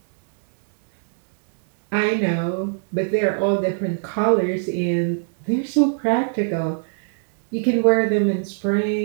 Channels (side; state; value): left; silent; 65 dB below the other